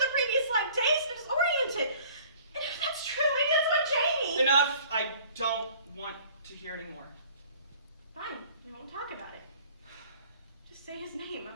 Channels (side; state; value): both; inverted; correlation -0.51